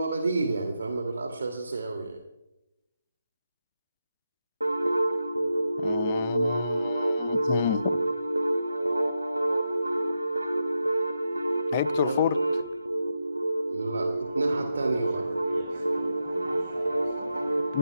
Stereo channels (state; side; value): inverted; both; correlation -0.86